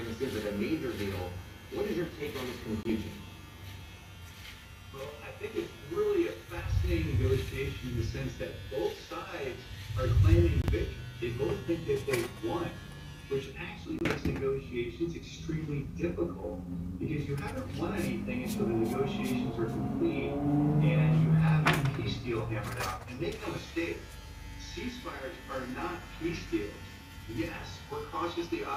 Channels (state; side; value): identical; both; correlation 1.00